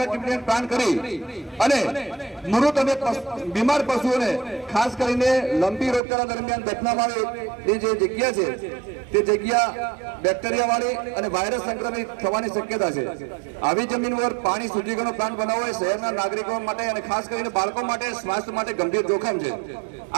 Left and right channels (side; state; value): left; drops out; at 6.0 s